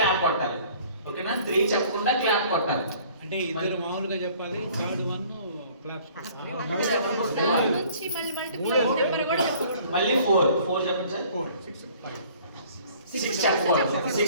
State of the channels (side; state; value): both; inverted; correlation -0.54